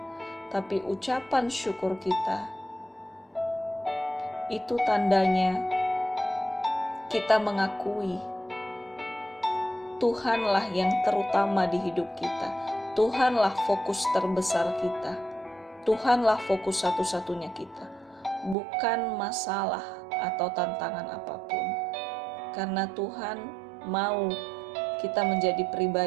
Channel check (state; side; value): drops out; left; at 18.6 s